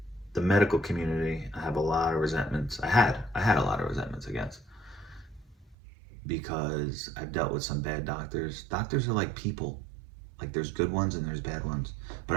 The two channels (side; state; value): left; drops out; at 5.8 s